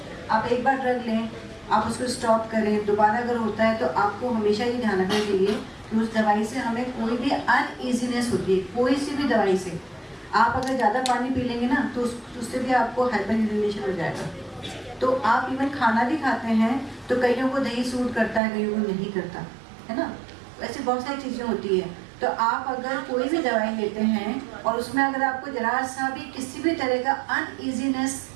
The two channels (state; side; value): drops out; left; at 18.4 s